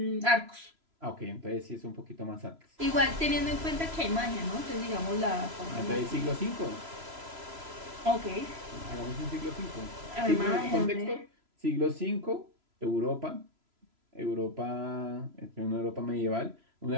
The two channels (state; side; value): late; left; 3.0 ms